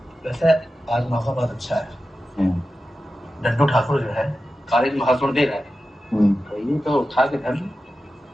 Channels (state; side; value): normal; both; correlation 0.93